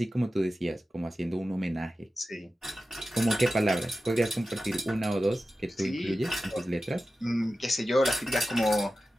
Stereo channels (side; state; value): both; normal; correlation 0.93